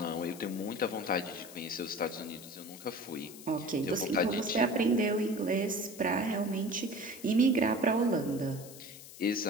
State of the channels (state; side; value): noise; left; hiss, 16 dB below the sound